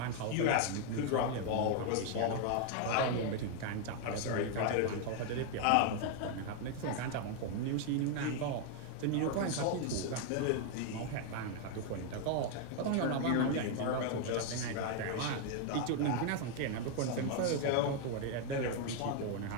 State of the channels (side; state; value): both; different; correlation 0.00